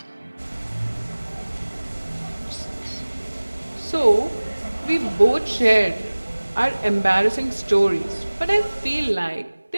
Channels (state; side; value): inverted; both; correlation -1.00